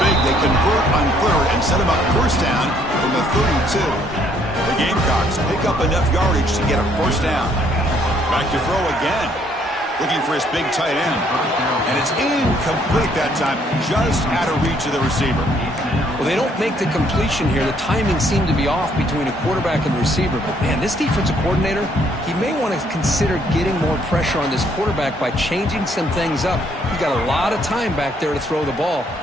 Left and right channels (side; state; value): both; normal; correlation 0.66